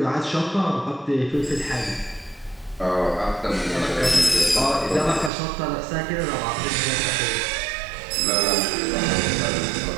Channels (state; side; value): drops out; left; at 5.3 s